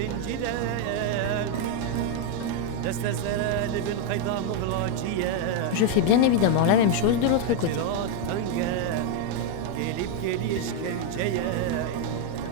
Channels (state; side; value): different; both; correlation 0.01